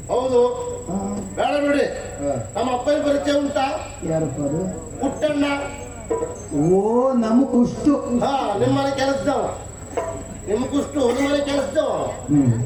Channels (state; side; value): identical; both; correlation 1.00